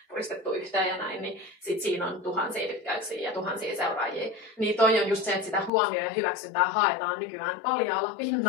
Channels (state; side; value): drops out; right; at 5.7 s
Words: puristettu yhteen ja näin, niin sit siinä on tuhansia tykkäyksiä ja tuhansia seuraajia. Niin toi on just se, että sitä huomioon ja hyväksyntää haetaan nykyään paljaalla